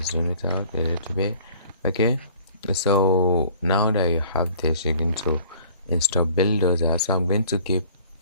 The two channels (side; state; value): both; inverted; correlation -0.51